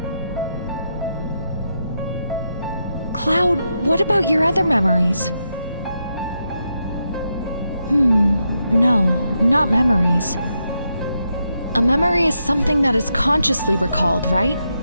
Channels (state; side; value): inverted; both; correlation -0.84